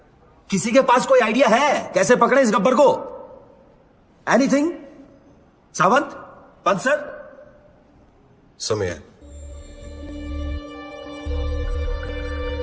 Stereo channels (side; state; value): both; identical; correlation 1.00